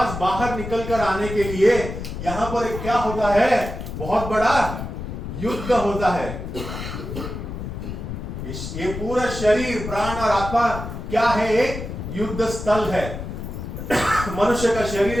बाहर निकलकर आने के लिए यहां पर एक क्या होता है? बहुत बड़ा युद्ध होता है। ये पूरा शरीर, प्राण और आत्मा क्या है? एक युद्ध स्थल है। मनुष्य का शरीर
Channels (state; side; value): noise; left; rumble, 7 dB below the sound